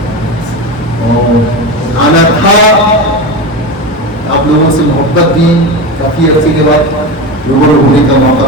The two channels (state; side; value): normal; both; correlation 0.22